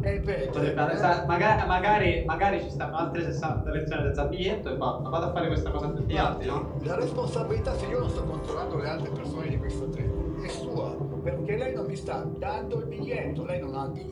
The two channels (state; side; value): identical; both; correlation 1.00